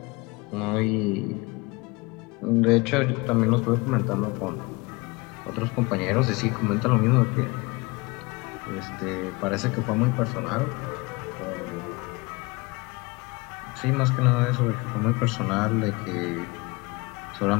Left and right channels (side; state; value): right; quieter; 25.3 dB